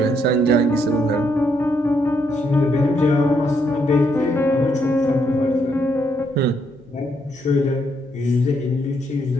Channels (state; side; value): noise; right; hum, 27 dB below the sound